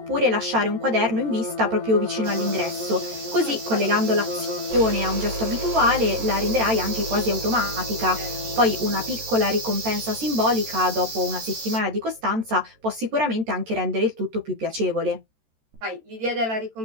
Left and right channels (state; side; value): late; left; 13 ms